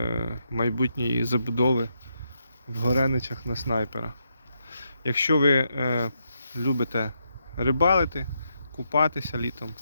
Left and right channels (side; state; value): both; inverted; correlation -0.81